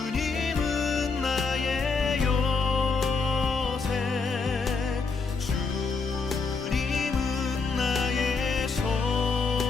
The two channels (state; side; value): quieter; right; 4.5 dB